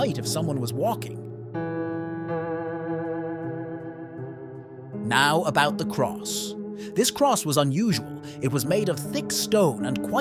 if someone was walking. Now about the cross. This cross was unusual. It was made of thick stone and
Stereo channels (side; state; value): both; identical; correlation 1.00